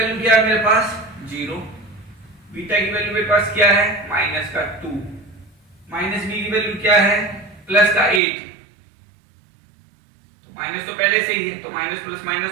क्या है मेरे पास 0, बीटा की वैल्यू मेरे पास क्या है माइनस का 2, माइनस बी की वैल्यू क्या है प्लस का 8, तो माइनस तो पहले से ही है तो माइनस प्लस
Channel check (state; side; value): drops out; left; at 8.2 s